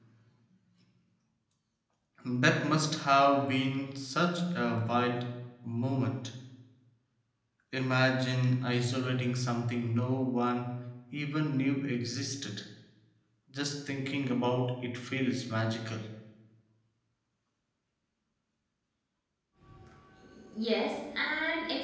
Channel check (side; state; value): both; identical; correlation 1.00